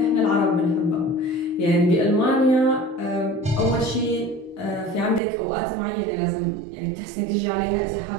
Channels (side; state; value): left; drops out; at 5.2 s